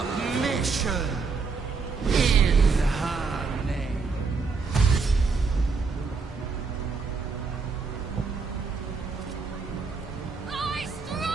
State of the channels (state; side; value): quieter; left; 4.8 dB